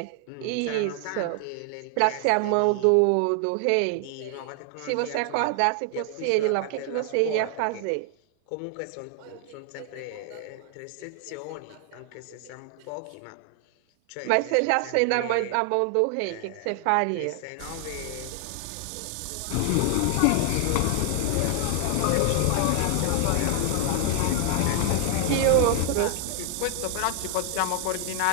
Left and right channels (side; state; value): both; different; correlation 0.00